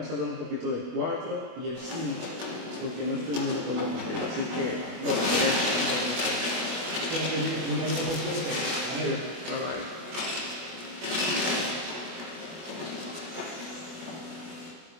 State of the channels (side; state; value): left; late; 24 ms